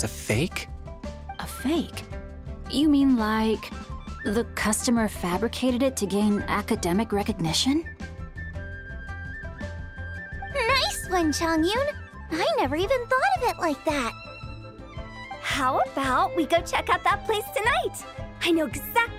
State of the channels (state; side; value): identical; both; correlation 1.00